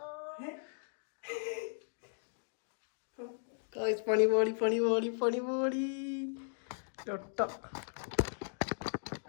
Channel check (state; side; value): silent; right; digital silence